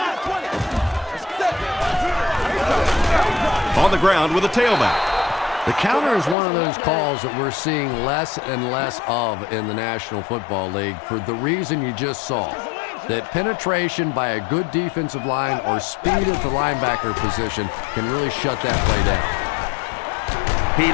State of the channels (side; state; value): right; drops out; at 6.4 s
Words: On the ground with a tailback. The counter is one of those calls that we're seeing less and less of in the National Football League for the reason you just saw. That penetration by a good defensive line or speed at the linebacker position can really shut that play down. He